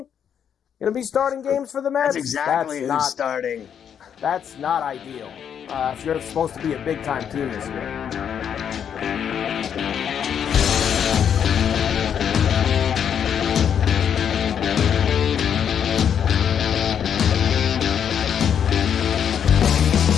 going to be starting games for the Mets? That's exactly who's starting. That's not ideal if you're supposed to be a big-time team this year.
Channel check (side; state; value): right; quieter; 8.3 dB